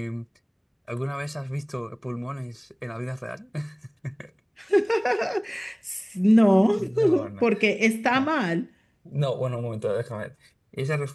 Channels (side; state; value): both; identical; correlation 1.00